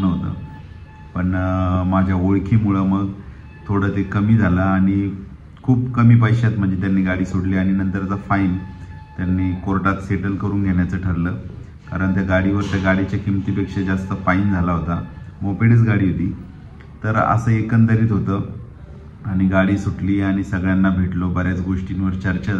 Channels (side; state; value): both; identical; correlation 1.00